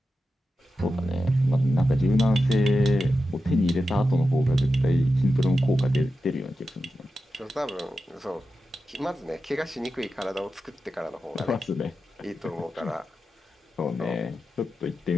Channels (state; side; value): normal; both; correlation 0.91